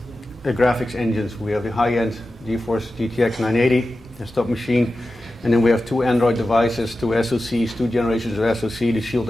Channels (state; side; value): normal; both; correlation 0.93